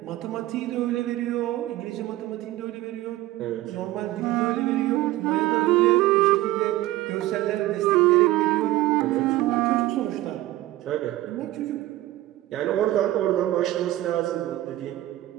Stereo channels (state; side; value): quieter; left; 16.0 dB